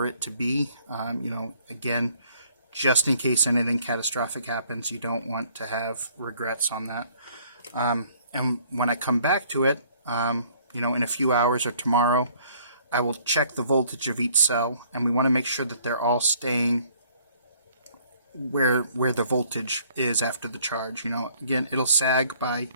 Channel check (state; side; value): inverted; both; correlation -0.60